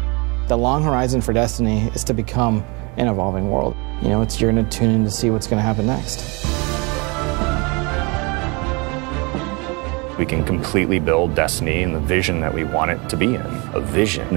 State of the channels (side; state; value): left; quieter; 29.3 dB